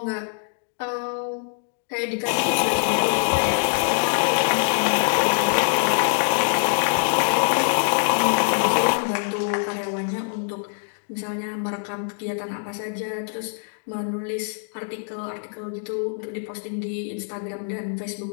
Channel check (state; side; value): silent; right; digital silence